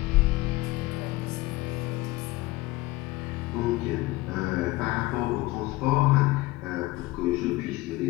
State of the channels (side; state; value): right; quieter; 19.6 dB